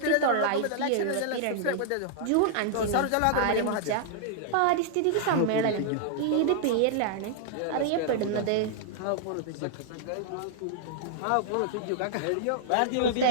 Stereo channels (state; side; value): different; both; correlation -0.01